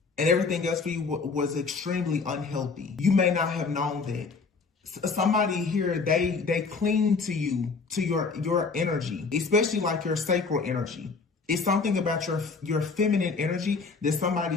and everything else for you was extremely unhealthy. You may not have known that. Somebody here, they cling to you, to your energy, especially like your sacral energy. It's something about your feminine energy that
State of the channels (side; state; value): right; quieter; 4.6 dB